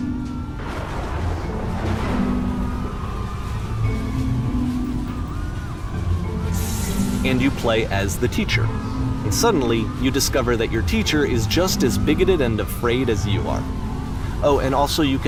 And you play as the teacher. And suddenly, you discover that your teacher is just as bigoted and afraid as you are. Oh, and also you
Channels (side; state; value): both; identical; correlation 1.00